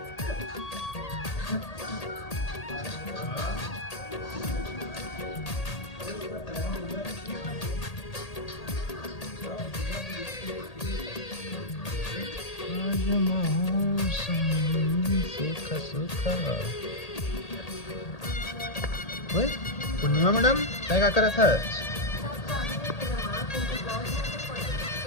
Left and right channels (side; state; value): right; late; 1.8 ms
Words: ओए पूर्णिमा मैडम काय करत आहात?